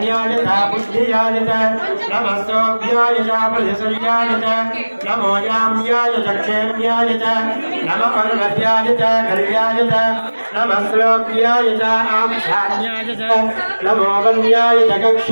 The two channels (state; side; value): inverted; both; correlation -1.00